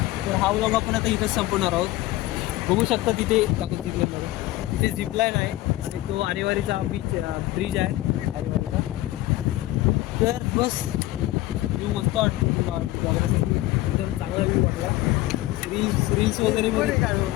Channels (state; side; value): quieter; right; 16.9 dB